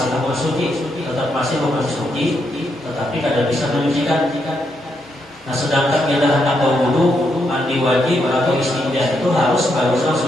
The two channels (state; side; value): normal; both; correlation 0.79